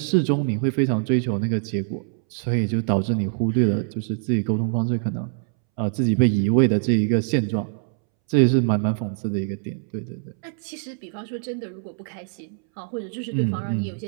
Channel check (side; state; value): left; silent; 63 dB below the other